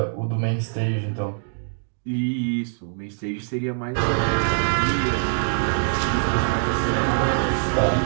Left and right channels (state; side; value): silent; left; digital silence